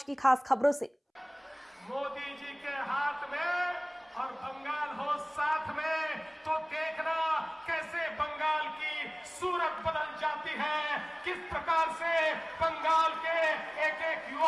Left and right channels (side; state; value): both; identical; correlation 1.00